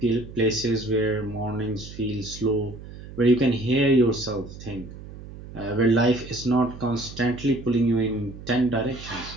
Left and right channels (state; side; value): noise; right; hum, 14 dB below the sound